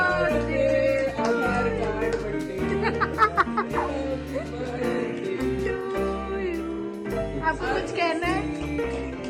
आपको कुछ कहना है?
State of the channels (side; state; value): both; identical; correlation 1.00